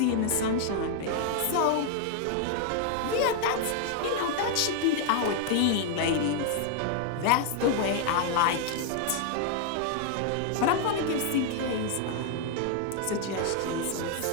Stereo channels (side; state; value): both; different; correlation 0.00